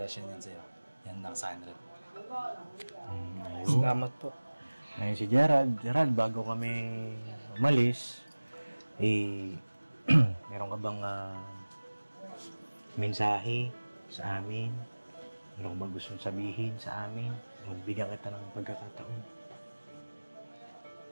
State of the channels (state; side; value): inverted; both; correlation -1.00